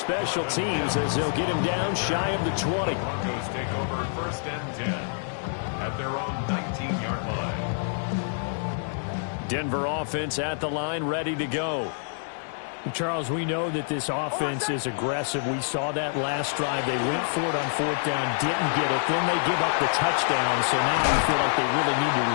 teams as they'll get him down shy of the 20. Broncos take over 1st and 10 at their own 19-yard line. Denver offense at the line, ready to go. Charles, we know that this offense is aggressive. We saw that last drive. They went for it on 4th down, didn't get it. Then they give up the touchdown, so now you feel like they really need to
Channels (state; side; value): silent; right; digital silence